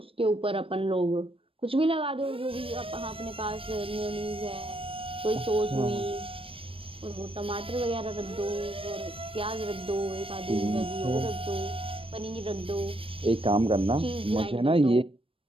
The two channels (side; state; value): left; late; 0.26 ms